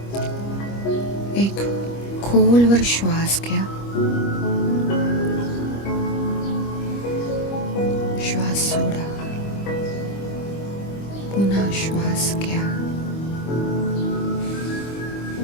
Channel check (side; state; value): right; late; 25 ms